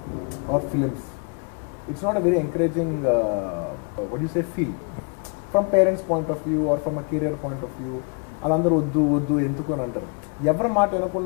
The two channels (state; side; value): quieter; right; 36.4 dB